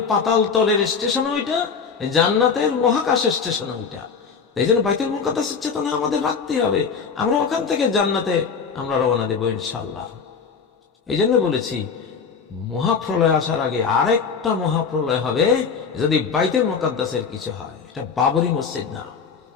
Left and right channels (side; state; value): right; quieter; 5.8 dB